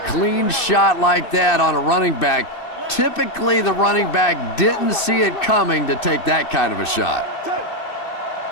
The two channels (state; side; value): late; right; 2.5 ms